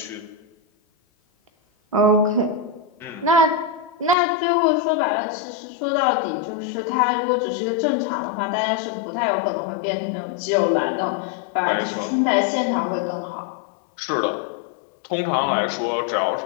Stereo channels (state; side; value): drops out; right; at 4.2 s